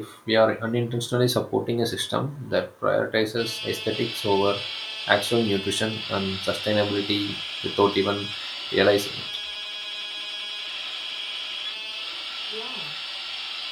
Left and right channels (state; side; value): identical; both; correlation 1.00